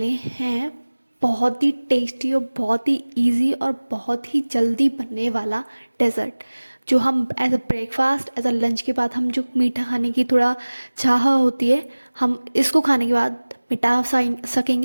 हैं बहुत ही टेस्टी और बहुत ही इजी और बहुत ही जल्दी बनने वाला डेज़र्ट, जो हम as a breakfast as a lunch के बाद हम जो मीठा खाने की थोड़ा चाह होती है, हम इसको खाने के बाद मिटा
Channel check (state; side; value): inverted; both; correlation -1.00